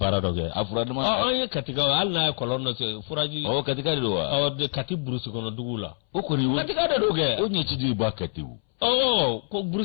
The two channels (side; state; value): right; silent; 61 dB below the other